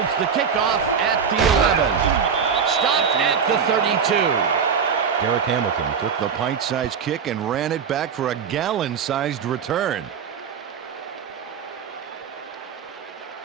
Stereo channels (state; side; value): quieter; left; 6.7 dB